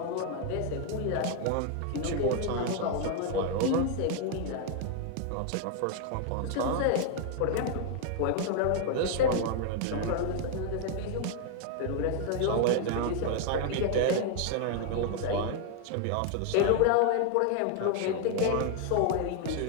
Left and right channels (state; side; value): different; both; correlation 0.00